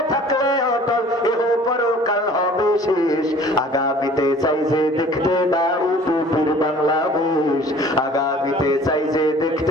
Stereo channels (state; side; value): normal; both; correlation 0.49